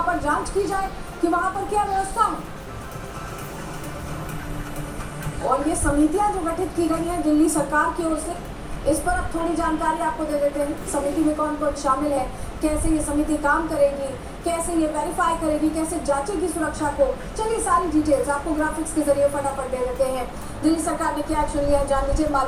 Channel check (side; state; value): both; identical; correlation 1.00